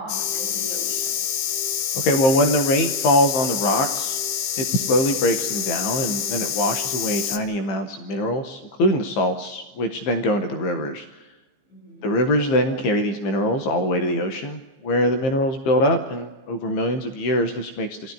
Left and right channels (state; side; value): late; right; 15 ms